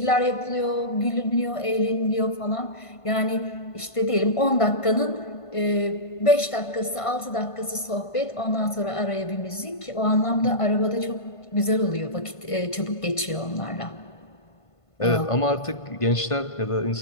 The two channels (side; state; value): right; late; 1.5 ms